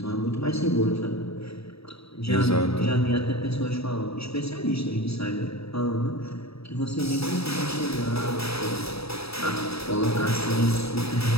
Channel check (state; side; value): late; right; 0.77 ms